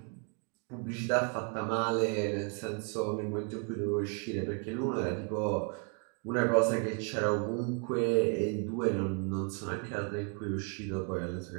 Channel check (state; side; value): quieter; left; 36.7 dB